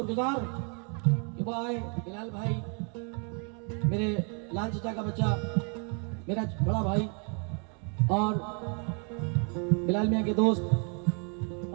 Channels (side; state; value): left; quieter; 38.4 dB